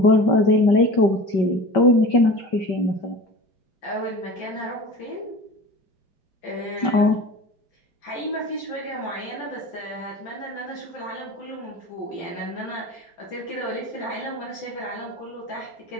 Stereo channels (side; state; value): right; late; 5.2 ms